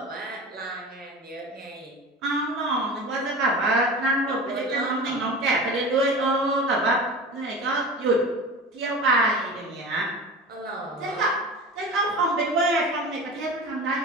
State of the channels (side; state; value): both; normal; correlation 0.33